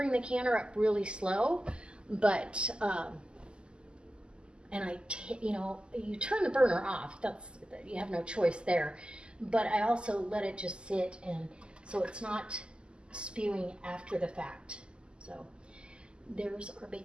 the canner up really slow, but and you know, you turn the burner off. That's, you have no choice there. But I also let it just sit, and so it's not spewing after the fact. So there's our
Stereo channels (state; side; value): late; left; 0.050 ms